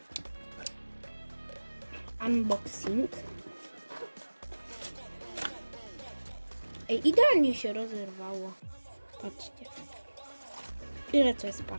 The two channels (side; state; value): both; inverted; correlation -1.00